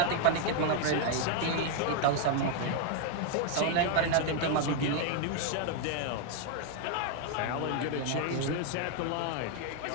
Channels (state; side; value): different; both; correlation 0.00